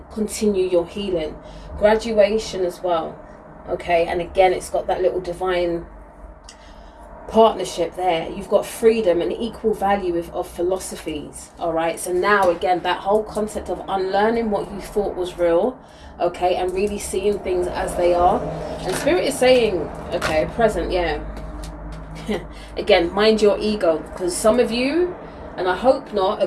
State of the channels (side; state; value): both; identical; correlation 1.00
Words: continue your healing. Graduation as well, okay? And again, it's got that little divine partnership there. You've got freedom and equal value of philosophies, all right? So now, again, that whole concept of unlearning what you thought was real, okay, and really seeing things as they are. And Spirit is saying, okay, present, yeah. Again, mind your ego, because some of you, and I hope not, are